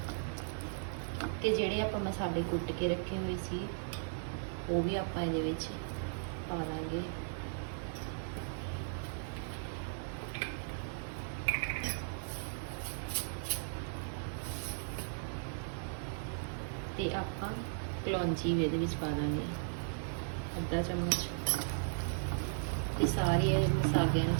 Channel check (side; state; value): left; silent; 53 dB below the other